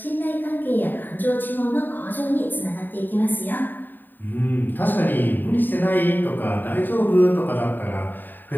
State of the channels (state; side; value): late; right; 0.091 ms